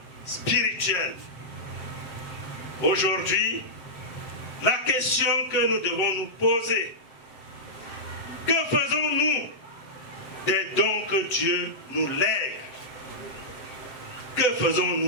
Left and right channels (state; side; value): late; right; 7.9 ms